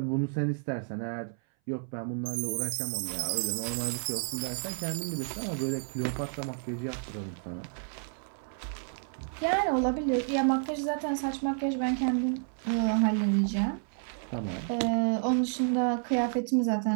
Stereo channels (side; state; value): left; silent; 57 dB below the other